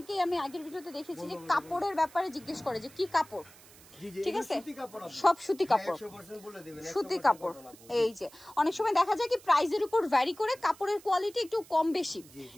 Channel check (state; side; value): noise; right; hiss, 22 dB below the sound